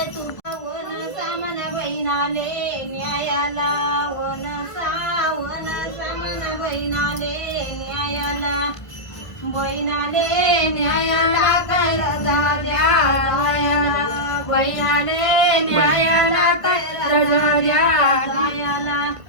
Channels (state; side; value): late; right; 1.5 ms